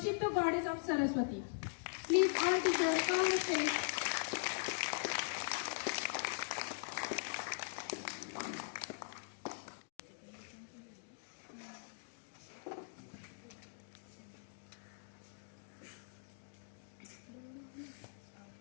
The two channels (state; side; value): silent; right; digital silence